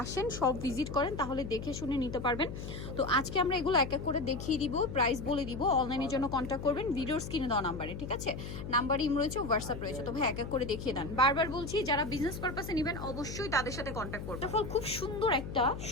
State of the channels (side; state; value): left; noise; hum, 8 dB below the sound